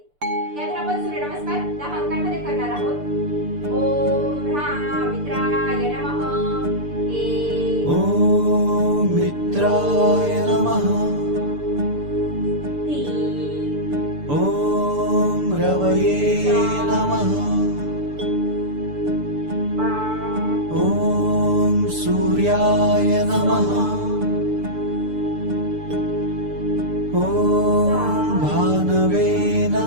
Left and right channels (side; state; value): left; late; 6.8 ms